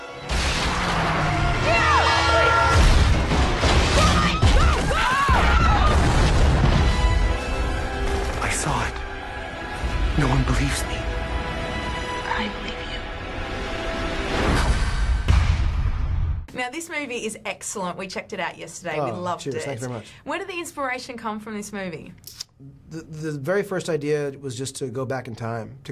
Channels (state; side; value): identical; both; correlation 1.00